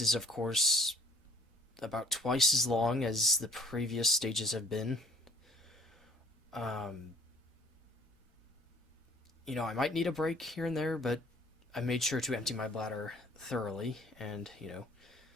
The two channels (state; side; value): normal; both; correlation 0.54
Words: is, of course, about twice as long as the previous stages have been. You know, I might need a break here and there, but I made sure to empty my bladder thoroughly, and, you know,